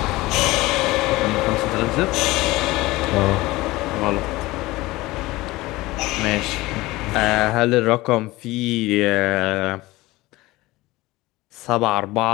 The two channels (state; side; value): quieter; right; 19.7 dB